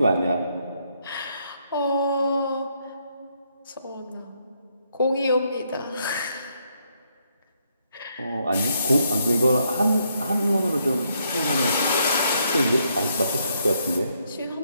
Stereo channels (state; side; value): inverted; both; correlation -0.75